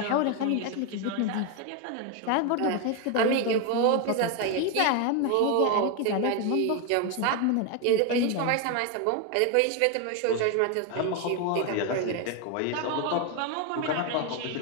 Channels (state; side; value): different; both; correlation 0.01